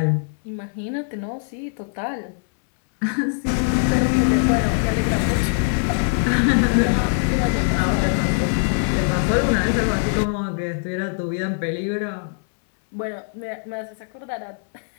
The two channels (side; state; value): right; silent; digital silence